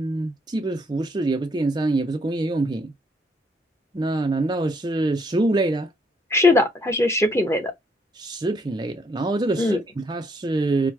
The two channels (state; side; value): normal; both; correlation 0.70